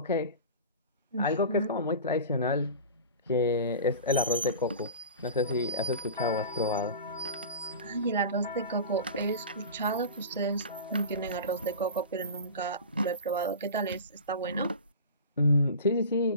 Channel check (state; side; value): inverted; both; correlation -0.33